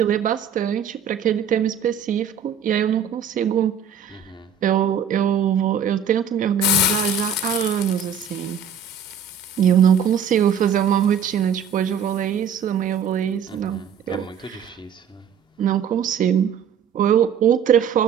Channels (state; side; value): quieter; left; 7.0 dB